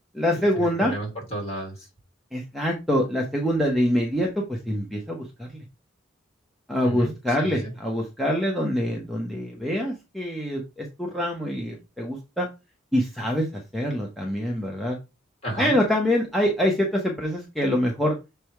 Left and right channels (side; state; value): both; normal; correlation 0.70